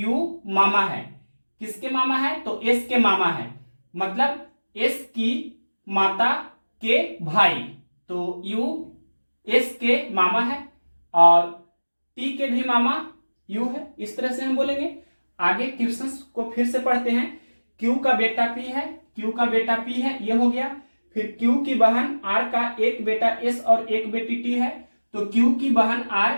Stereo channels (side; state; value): both; inverted; correlation -1.00